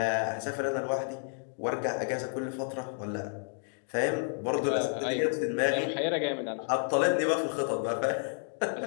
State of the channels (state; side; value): silent; right; 57 dB below the other